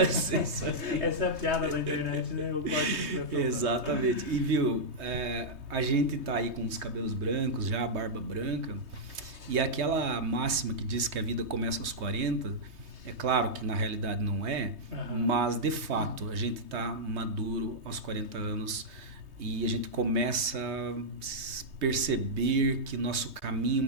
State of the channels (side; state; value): left; late; 3.2 ms